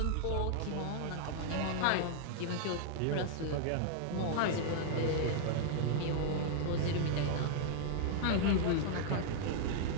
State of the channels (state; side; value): different; both; correlation -0.01